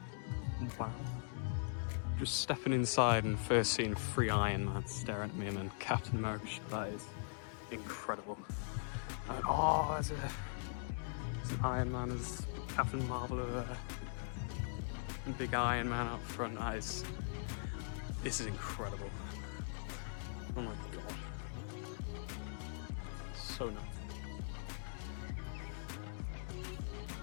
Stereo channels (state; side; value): silent; right; digital silence